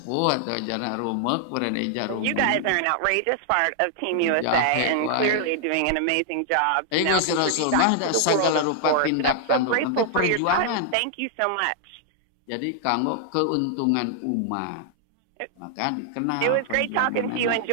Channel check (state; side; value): different; both; correlation 0.00